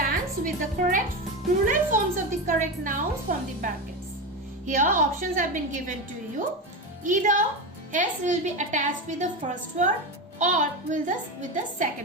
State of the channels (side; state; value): both; normal; correlation 0.18